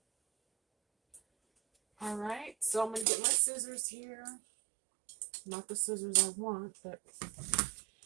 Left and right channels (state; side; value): drops out; left; at 3.1 s